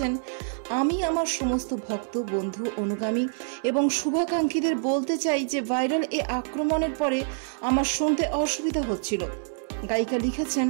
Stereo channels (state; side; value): silent; left; digital silence